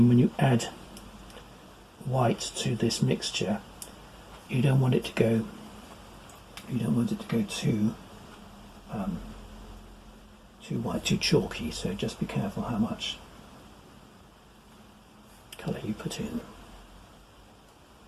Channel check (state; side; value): identical; both; correlation 1.00